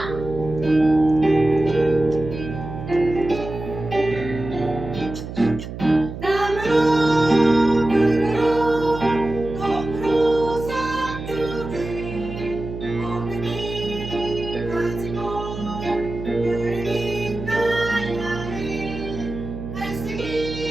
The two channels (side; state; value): right; noise; hum, 9 dB below the sound